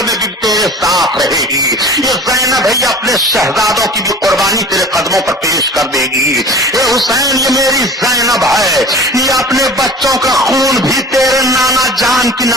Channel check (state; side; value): normal; both; correlation 0.40